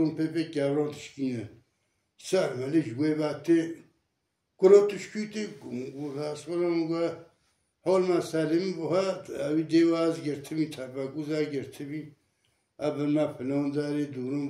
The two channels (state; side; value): identical; both; correlation 1.00